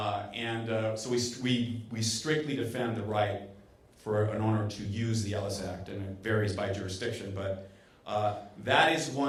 So we strictly defend the right for an owner to use the Ellis Act, and it varies by jurisdiction. But that is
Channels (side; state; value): both; identical; correlation 1.00